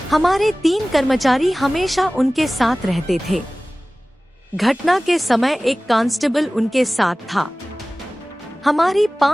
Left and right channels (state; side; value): normal; both; correlation 0.98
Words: हमारे 3 कर्मचारी हमेशा उनके साथ रहते थे। घटना के समय एक कांस्टेबल उनके साथ था। हमारी